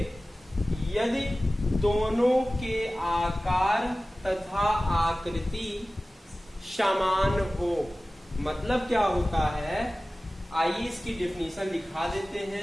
यदि दोनों के आकार तथा आकृति समान हो। मतलब क्या होता है, आइए इसकी डेफिनेशन लिखा देते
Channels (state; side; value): normal; both; correlation 0.97